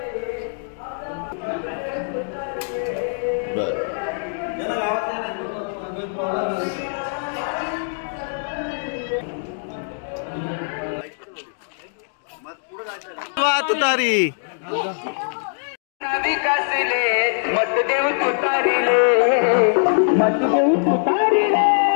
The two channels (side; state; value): right; silent; digital silence